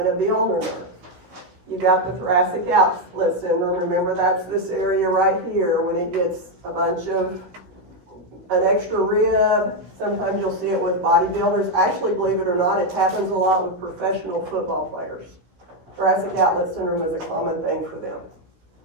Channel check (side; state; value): left; late; 16 ms